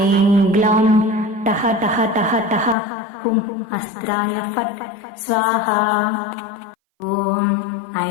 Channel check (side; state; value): right; drops out; at 2.8 s